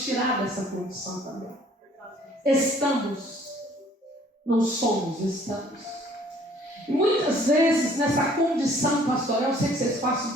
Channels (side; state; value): both; normal; correlation 0.57